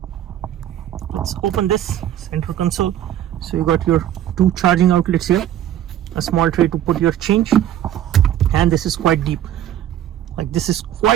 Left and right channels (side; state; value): left; quieter; 11.5 dB